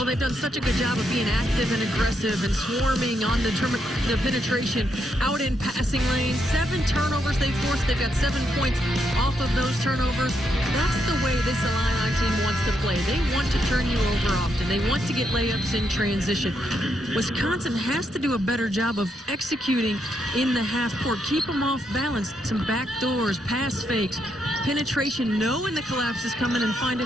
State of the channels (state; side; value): normal; both; correlation 0.79